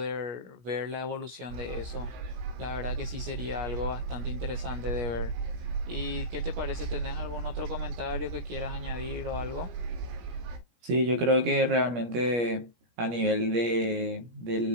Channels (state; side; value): late; left; 17 ms